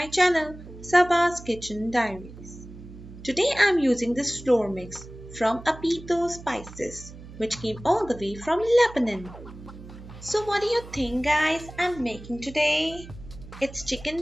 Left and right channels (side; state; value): right; noise; hum, 16 dB below the sound